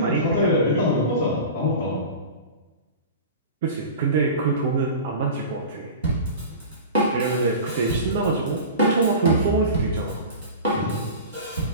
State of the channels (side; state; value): both; inverted; correlation -0.33